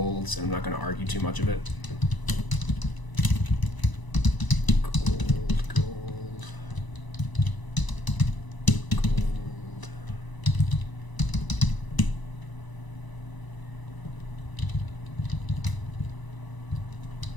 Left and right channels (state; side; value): late; right; 1.0 ms